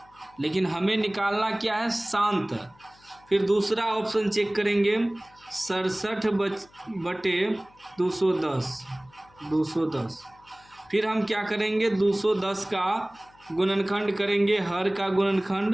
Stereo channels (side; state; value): left; noise; hum, 29 dB below the sound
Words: लेकिन हमें निकालना क्या है, शांत। फिर दूसरा ऑप्शन चेक करेंगे 67/210। फिर हम क्या करेंगे, 210 का गुणनखंड करेंगे, हर का